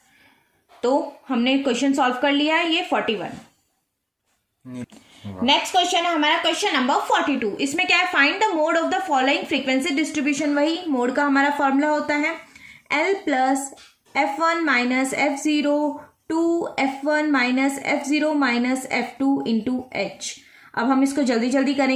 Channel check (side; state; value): both; identical; correlation 1.00